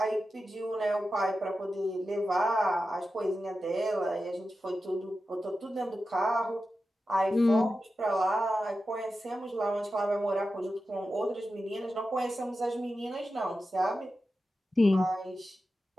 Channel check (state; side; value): normal; both; correlation 0.92